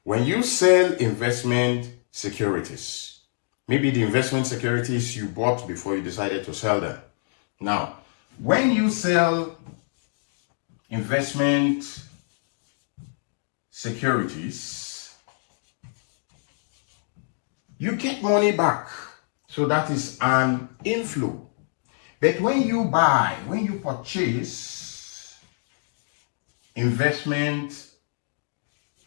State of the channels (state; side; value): silent; right; digital silence